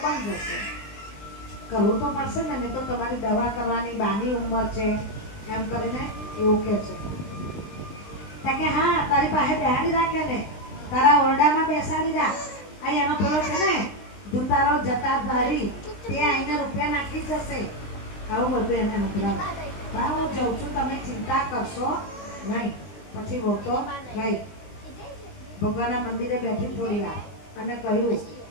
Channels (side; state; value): right; late; 20 ms